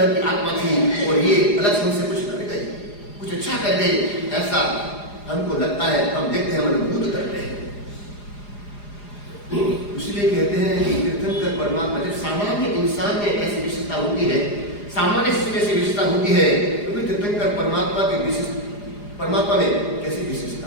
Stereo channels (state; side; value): late; right; 4.9 ms